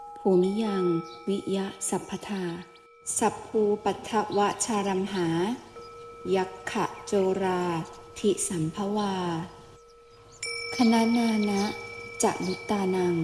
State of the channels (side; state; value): both; identical; correlation 1.00